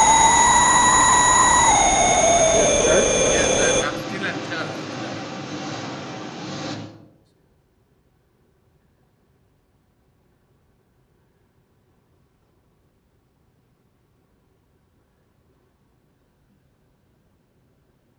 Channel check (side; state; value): both; identical; correlation 1.00